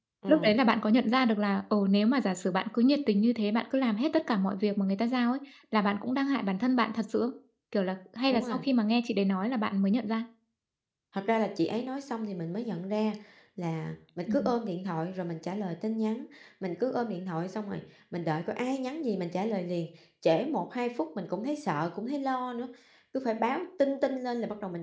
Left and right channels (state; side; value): identical; both; correlation 1.00